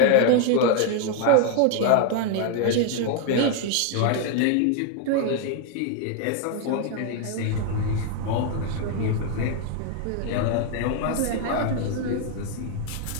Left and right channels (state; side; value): different; both; correlation 0.00